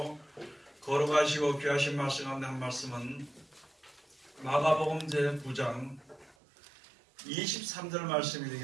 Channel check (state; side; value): drops out; left; at 6.4 s